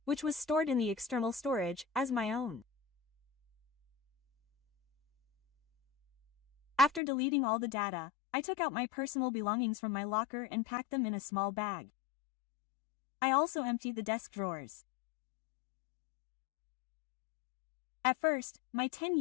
which was stored in the external storage, as my own. After deleting all the data, I took out my personal belongings from my locker and packed them in a small bag. I also emptied the desk drawers. At first, my 10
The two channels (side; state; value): right; drops out; at 7.0 s